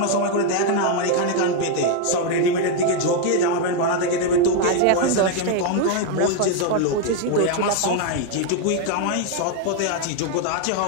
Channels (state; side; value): different; both; correlation 0.01